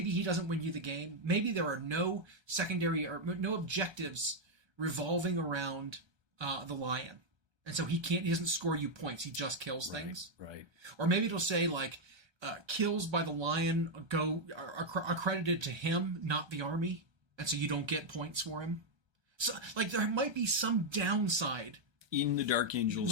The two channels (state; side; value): late; left; 1.2 ms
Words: he doesn't win you the game. Maybe there are no secondary or no objectives revolving around the lion, and so he doesn't score you points. He just kills things. Right. Or maybe it'll say like kills by the lion are credited to him, not the army, and so you don't get points for him. So like there might be some downside in the Dark Angels